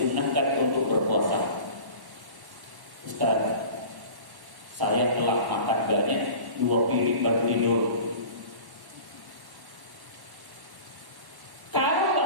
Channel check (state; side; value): late; left; 1.1 ms